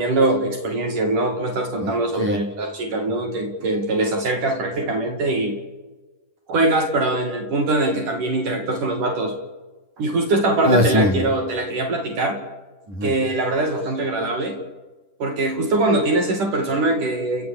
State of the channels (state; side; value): late; left; 10 ms